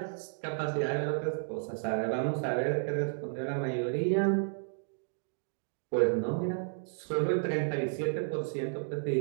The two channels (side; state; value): left; silent; digital silence